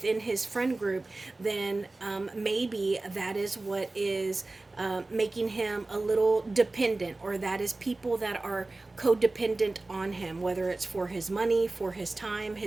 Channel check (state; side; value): quieter; left; 3.1 dB